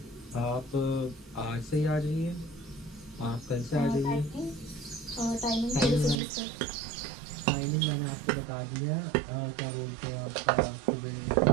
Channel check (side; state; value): left; drops out; at 6.2 s